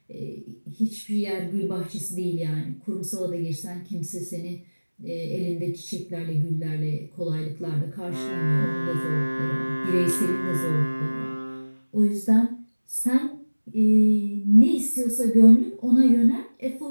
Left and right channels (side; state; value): both; inverted; correlation -1.00